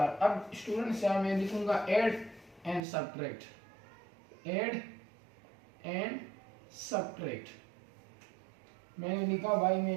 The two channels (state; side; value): drops out; left; at 2.8 s